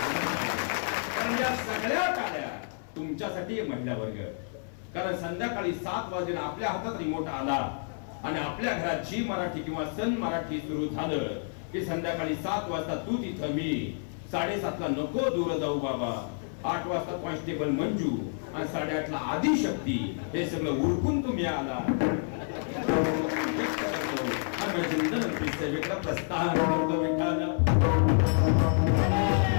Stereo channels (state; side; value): silent; right; 57 dB below the other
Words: कारण या सगळ्या टाळ्या तुमच्यासाठी महिला वर्ग. कारण संध्याकाळी 7 वाजता आपल्या हातात रिमोट आला आणि आपल्या घरात जी मराठी किंवा सन मराठी सुरू झालं की संध्याकाळी 7 वाजता तू तिथं, मी 7:30 ला नको दूर जाऊ बाबा, 8 वाजता कॉन्स्टेबल मंजू आणि 8:30 ला आदिशक्ती, हे सगळं उरकून तुम्ही आला. प्रस्थान करतो विठ्ठल.